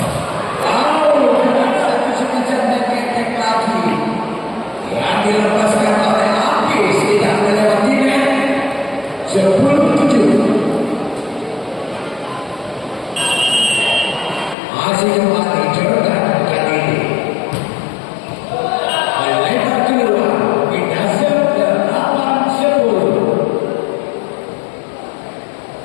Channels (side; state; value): right; drops out; at 14.6 s